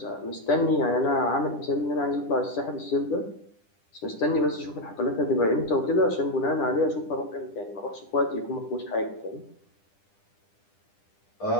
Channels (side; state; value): right; late; 10 ms